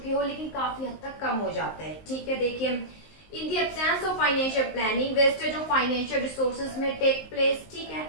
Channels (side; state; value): right; late; 19 ms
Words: हो, लेकिन काफी हद तक कम हो जाता है। ठीक है, देखिए in the absence of financial planning wastage of financial resources may take place. ठीक है,